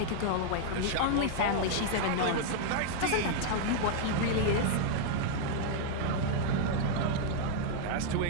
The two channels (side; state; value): both; different; correlation 0.00